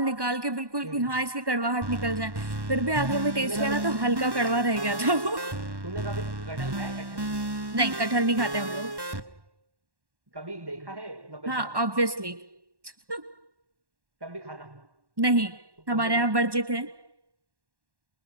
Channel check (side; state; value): left; late; 1.1 ms